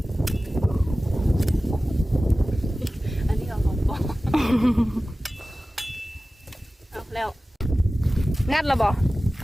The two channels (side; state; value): both; normal; correlation 0.96